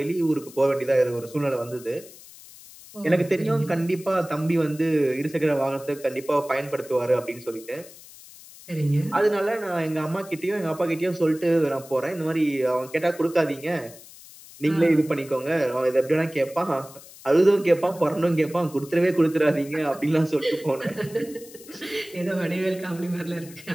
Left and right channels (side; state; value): left; noise; hiss, 19 dB below the sound